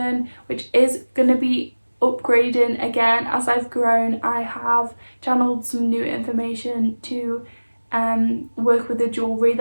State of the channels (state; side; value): inverted; both; correlation -1.00